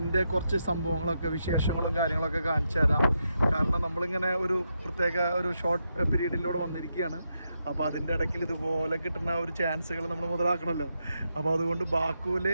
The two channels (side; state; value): both; inverted; correlation -0.83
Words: കുറച്ച് സംഭവങ്ങളൊക്കെ, വിശേഷങ്ങളും കാര്യങ്ങളൊക്കെ കാണിച്ചു തരാം. കാരണം നമ്മളിങ്ങനെ ഒരു പ്രത്യേക ഒരു ഷോർട്ട് പീരീഡിലൂടെ വന്നിരിക്കുകയാണ്. അപ്പോൾ അതിൻ്റെ ഇടയ്ക്ക് ഇതുപോലെ കിട്ടുന്ന ഒരു ചാൻസുകൾ നമ്മൾ മുതലാക്കണമല്ലോ. അപ്പോൾ അതുകൊണ്ട് ബാക്കുവിൽ